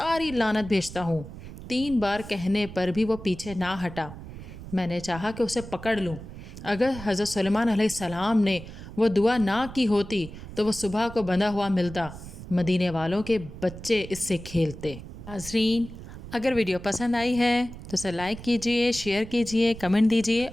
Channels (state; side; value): noise; right; rumble, 13 dB below the sound